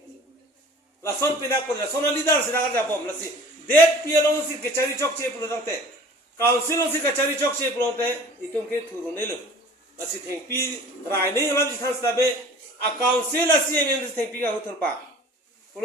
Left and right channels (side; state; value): both; normal; correlation 0.46